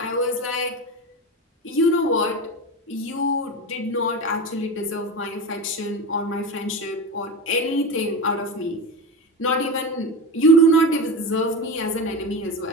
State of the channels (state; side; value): normal; both; correlation 0.23